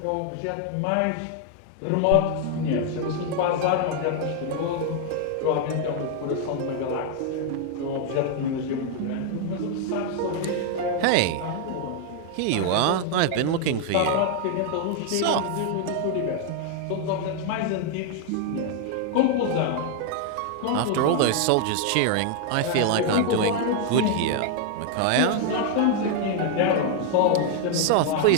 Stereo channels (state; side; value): different; both; correlation 0.00